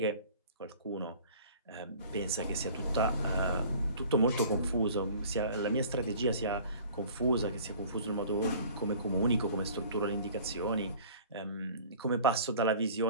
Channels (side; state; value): both; inverted; correlation -0.47